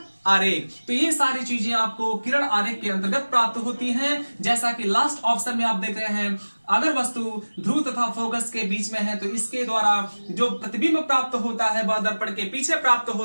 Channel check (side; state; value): both; inverted; correlation -1.00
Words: आरेख। तो ये सारी चीजें आपको किरण आरेख के अंतर्गत प्राप्त होती हैं। जैसा कि लास्ट ऑप्शन में आप देख रहे हैं, अगर वस्तु ध्रुव तथा फोकस के बीच में है तो इसके द्वारा जो प्रतिबिंब प्राप्त होता है वह दर्पण के पीछे प्राप्त